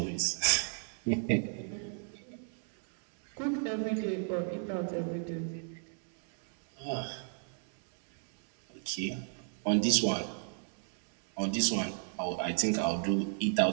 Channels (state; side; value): silent; left; digital silence